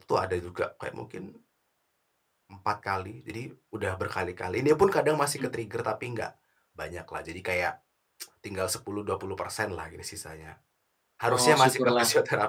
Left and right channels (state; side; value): identical; both; correlation 1.00